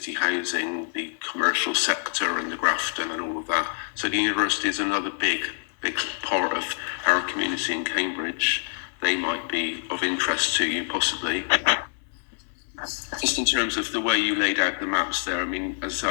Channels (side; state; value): right; silent; 61 dB below the other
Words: housing, the commercial sector and the Grafton and all of that. So the university is another big part of our community in Cambridge. They might be of interest to you, possibly. Just in terms of the way you laid out the maps there, I mean, as